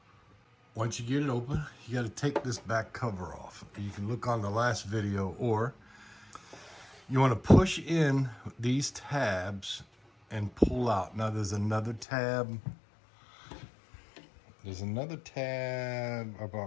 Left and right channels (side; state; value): right; drops out; at 12.1 s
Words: Once you get it open, you got to take this back cover off. You can look on the last video, or you want to push in these tabs and pull out. Now there's another tab. There's another tab